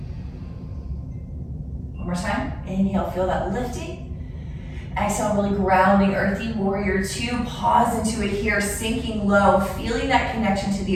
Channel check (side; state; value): both; identical; correlation 1.00